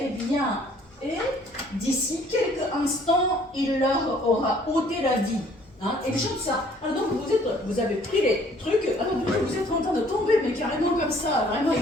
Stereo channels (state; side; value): normal; both; correlation 0.59